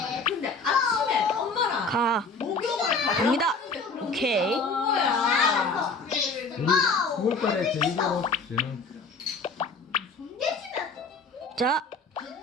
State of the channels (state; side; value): quieter; right; 3.8 dB